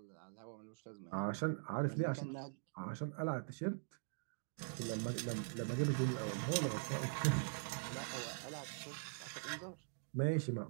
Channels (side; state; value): left; silent; digital silence